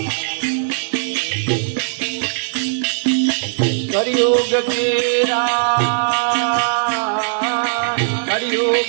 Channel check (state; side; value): silent; left; digital silence